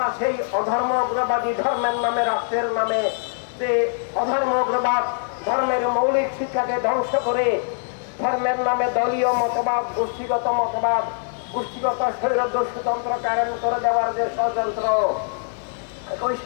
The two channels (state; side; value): silent; right; digital silence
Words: সেই অধর্ম অগ্রবাদী ধর্মের নামে, রাষ্ট্রের নামে যে অধর্ম অগ্রবাদ, ধর্মের মৌলিক শিক্ষাকে ধ্বংস করে ধর্মের নামে দলীয় মতবাদ, গোষ্ঠীগত মতবাদ, গোষ্ঠীগত স্বৈরদস্যুতন্ত্র কায়েম করে দেওয়ার যে ষড়যন্ত্র, একই